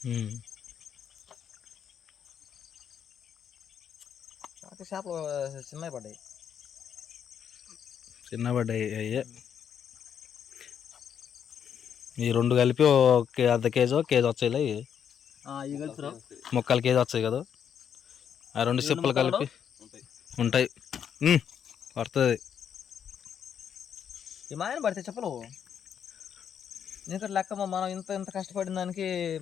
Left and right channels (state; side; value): quieter; right; 8.3 dB